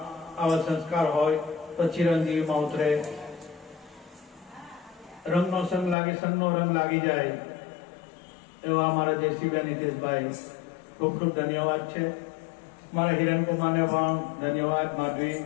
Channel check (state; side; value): drops out; right; at 6.0 s